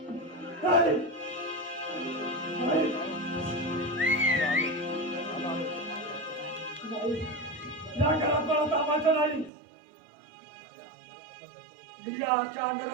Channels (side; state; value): left; drops out; at 9.5 s